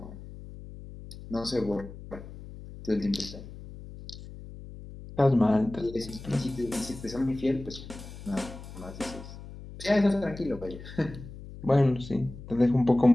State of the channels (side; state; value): left; noise; hum, 14 dB below the sound